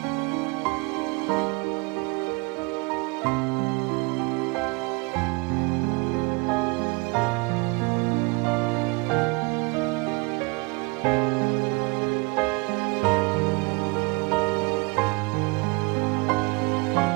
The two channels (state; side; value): quieter; left; 29.0 dB